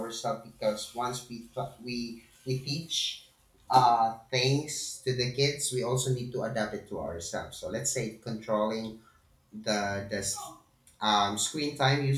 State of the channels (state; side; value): identical; both; correlation 1.00